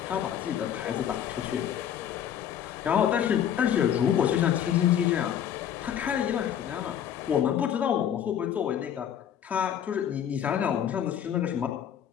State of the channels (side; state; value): right; quieter; 9.5 dB